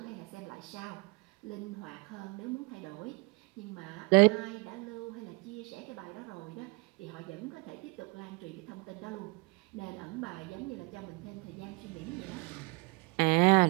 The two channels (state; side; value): quieter; left; 28.1 dB